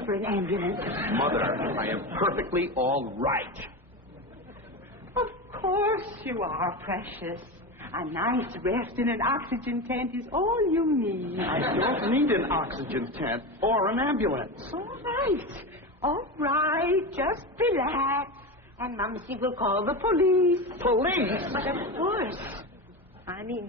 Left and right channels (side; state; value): both; normal; correlation 0.21